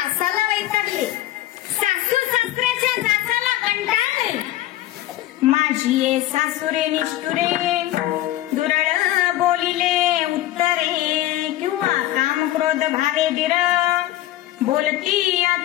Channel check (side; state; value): right; quieter; 14.7 dB